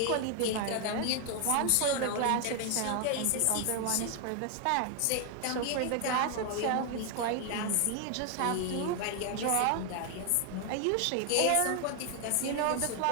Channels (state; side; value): different; both; correlation 0.00